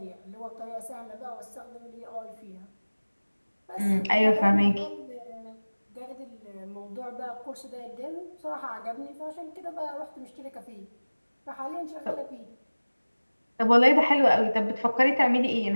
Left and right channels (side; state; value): both; inverted; correlation -1.00